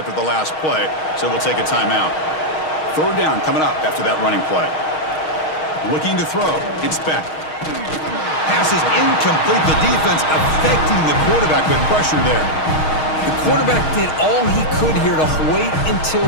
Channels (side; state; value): right; late; 6.4 ms